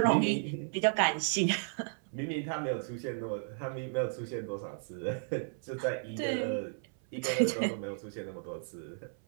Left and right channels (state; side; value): silent; left; 55 dB below the other